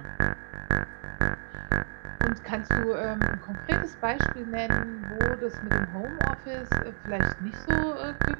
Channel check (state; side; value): silent; left; digital silence